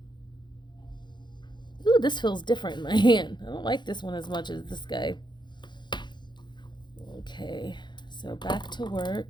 Ooh, this feels different in my hand. I don't like this one as much as this guy. Okay, so back to work.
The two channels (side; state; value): right; late; 0.22 ms